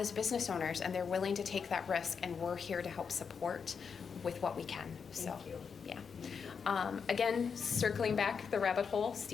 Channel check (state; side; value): quieter; right; 6.1 dB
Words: business owners, and they're willing to take that risk, and we're here to help support with what we can. So, Thank you. yeah. Again, circling back the rabbit hole,